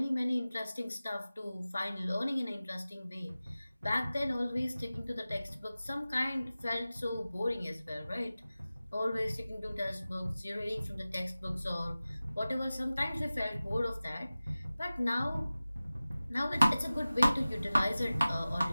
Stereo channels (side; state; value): both; inverted; correlation -0.96